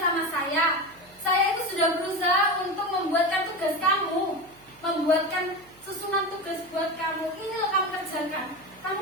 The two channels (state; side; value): noise; right; hum, 30 dB below the sound